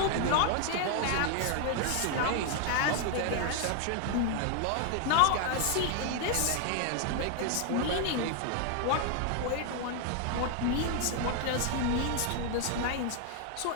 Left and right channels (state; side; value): different; both; correlation 0.00